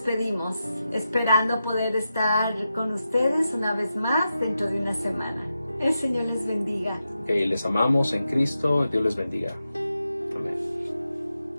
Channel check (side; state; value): both; inverted; correlation -0.89